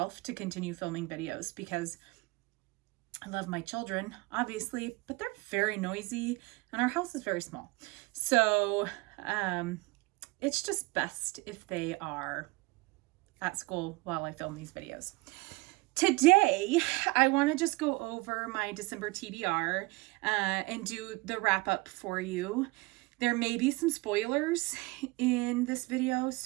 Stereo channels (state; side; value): quieter; left; 23.6 dB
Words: to continue filming videos because I love my children, obviously, but they're very noisy and our house is very small. So, it's just best if they are at school while I film these videos. Today, I want to just go over my December TBR and do the wrap up for you. There may be some spoilers in this video,